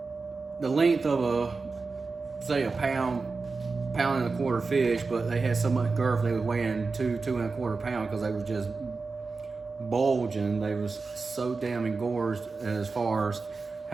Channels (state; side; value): quieter; left; 4.2 dB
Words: length of say a pound and a quarter fish, but they had so much girth they were weighing 2 and a quarter pounds because they were just bulging. They was so damn engorged as far as